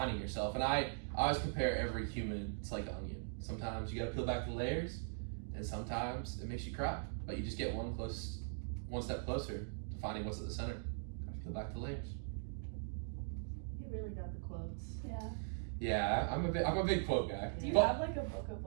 yourself. And I always compare every human to like an onion. Sometimes you gotta peel back the layers, and sometimes it makes you cry. But you just get one step closer to finding what's at the center. Gotta peel back the layers. You really got the quotes. Yeah. Yeah, I'm a big quote guy. Do you have like a book of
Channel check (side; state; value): left; silent; digital silence